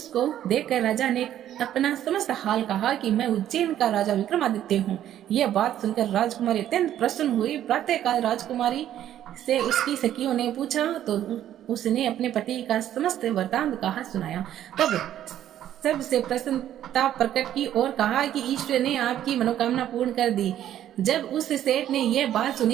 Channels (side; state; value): left; quieter; 11.5 dB